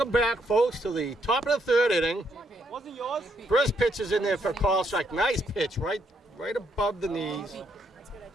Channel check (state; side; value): normal; both; correlation 0.74